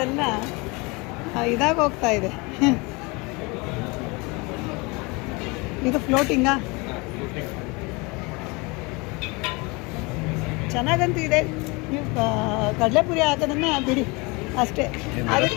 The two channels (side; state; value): right; quieter; 27.0 dB